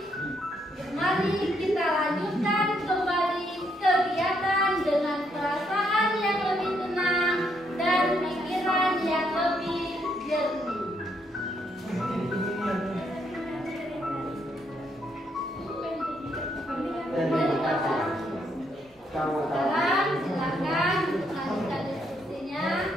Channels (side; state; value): both; normal; correlation 0.74